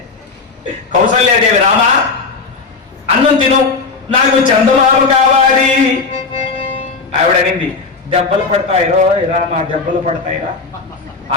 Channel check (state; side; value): quieter; right; 4.4 dB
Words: కౌసల్యాదేవి, రామా అన్నం తిను, నాకు చందమామ కావాలి. ఆవిడ అనింది, దెబ్బలు పడతాయిరో రామా, దెబ్బలు పడతాయిరా,